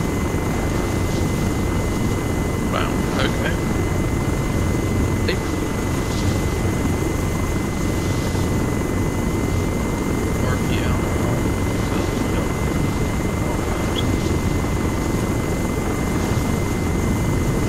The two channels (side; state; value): both; identical; correlation 1.00